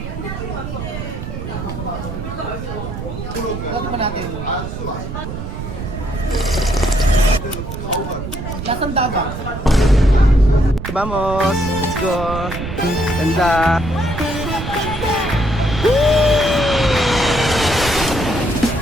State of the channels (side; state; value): right; noise; rumble, 7 dB below the sound